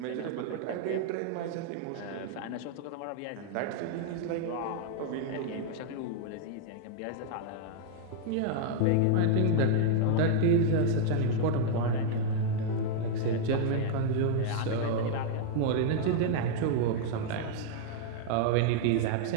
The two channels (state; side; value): different; both; correlation -0.01